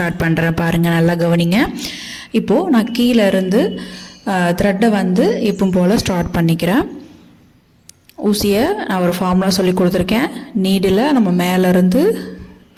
பண்ணுறேன். பாருங்கள், நல்லா கவனிங்க. இப்போது நான் கீழே இருந்து த்ரெட்டை வந்து எப்பவும் போல் ஸ்டார்ட் பண்ணிக்கிறேன். ஊசியை நான் ஒரு ஃபார்முலா சொல்லி கொடுத்துருக்கேன். நீடில் நம்ம மேலேருந்து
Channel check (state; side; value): identical; both; correlation 1.00